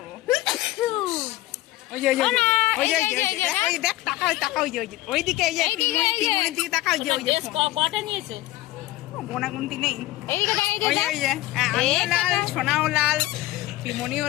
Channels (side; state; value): right; quieter; 16.5 dB